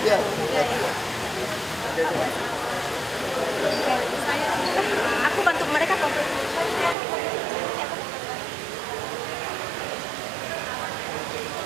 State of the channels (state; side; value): drops out; left; at 7.0 s